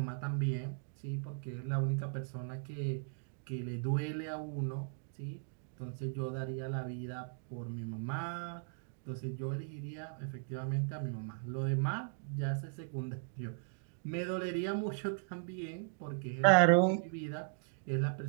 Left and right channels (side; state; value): left; silent; digital silence